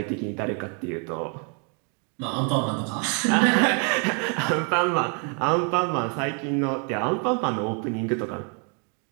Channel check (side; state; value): left; quieter; 38.3 dB